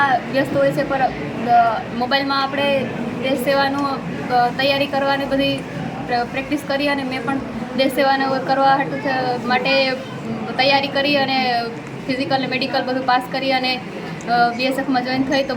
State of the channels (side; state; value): both; identical; correlation 1.00